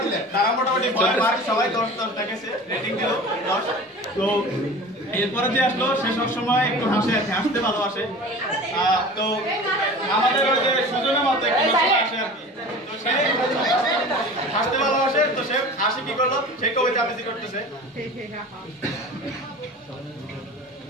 তারা মোটামুটি ভয় পায় সবাই 10 দেখেছে রেটিং দিল 10 তো এরপরে যে আসলো সে সব সময় একটু হাসতে ভালোবাসে তো আমাদের ওই যে সুজনের মতো একটু আসে আর কি তো সে হাসতে ভালোবাসে তো সে হাসি কি করলো সে কবিতা আবৃত্তি করতেছে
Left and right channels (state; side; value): normal; both; correlation 0.38